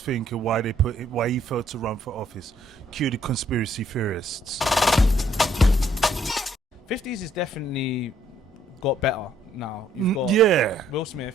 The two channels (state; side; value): normal; both; correlation 0.67